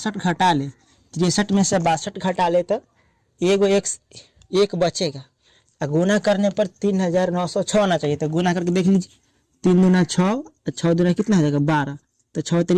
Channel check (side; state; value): both; identical; correlation 1.00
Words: घटा ले, 63 में से 62 घटा ले तो एगो एक बचेगा। गुना करने पर 3906 आना चाहिए। तो गुना करके देख लीजिए, 3 दूना 6, 6 दूना कितना हो जाएगा 12, तो 6